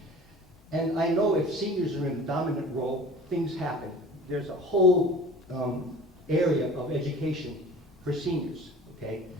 And I know if seniors are in a dominant role, things happen. There's a whole area of education for seniors, okay?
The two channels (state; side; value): normal; both; correlation 0.42